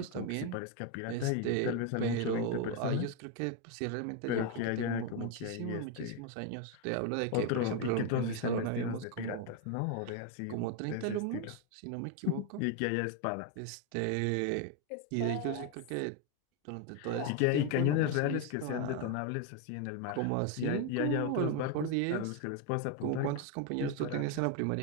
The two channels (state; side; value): different; both; correlation 0.01